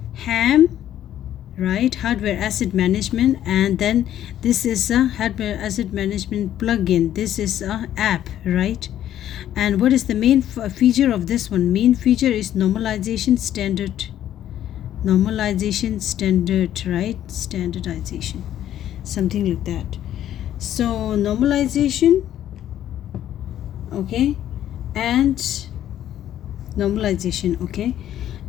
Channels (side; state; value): right; quieter; 11.6 dB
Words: HAM, right, hardware asset management, and then this is a hardware asset management plugin. This is a app, right? And what is the main feature of this one? Main feature is normalization standard. Normalization standard, right? Standardization, something like that. So normalization, okay, and normalization, okay.